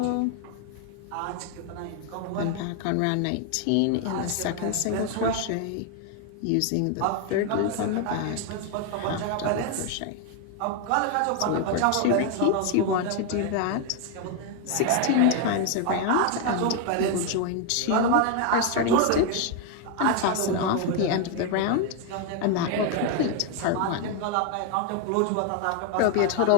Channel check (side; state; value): both; different; correlation 0.01